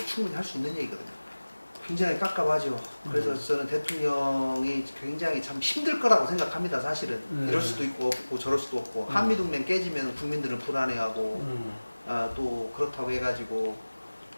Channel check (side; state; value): both; inverted; correlation -1.00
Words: 충분히 할 수 있는 얘기거든요. 굉장히 깝깝하죠. 그래서 저는 대통령이 굉장히 참 힘들 거라고 생각합니다, 사실은. 이럴 수도 있고 없고 저럴 수도 없고 한미동맹 깨지면 국민들은 불안해하고 또 그렇다고 해가지고